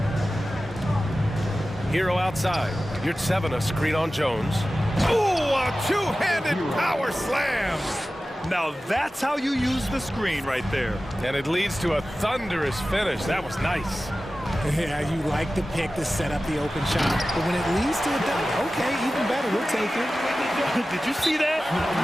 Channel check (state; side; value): normal; both; correlation 0.95